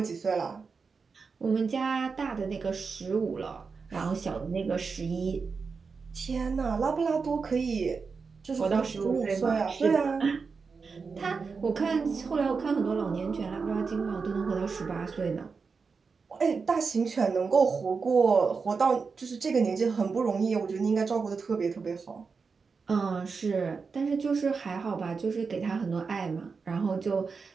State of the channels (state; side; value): quieter; left; 5.0 dB